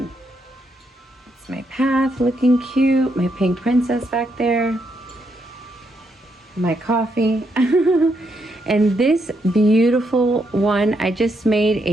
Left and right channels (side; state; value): both; normal; correlation 0.78